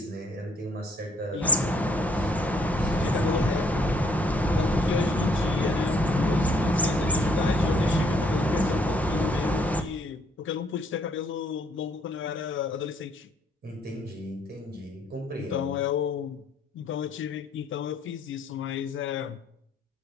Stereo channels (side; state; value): both; normal; correlation 0.65